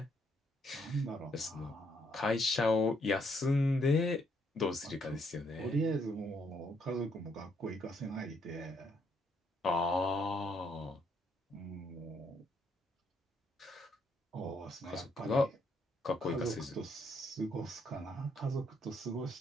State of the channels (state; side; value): normal; both; correlation 0.72